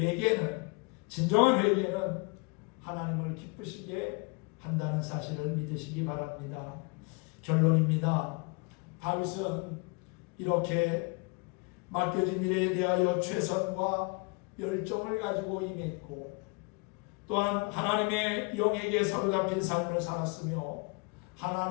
진정한 회개는 하나님을 기쁘시게 한다는 사실을 믿으시기 바랍니다. 결론입니다. 다윗은 이렇게 맡겨진 일에 대하여 최선과 열정을 가지고 임했고 또한 하나님의 영에게 사로잡힌 삶을 살았으며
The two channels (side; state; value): right; quieter; 30.5 dB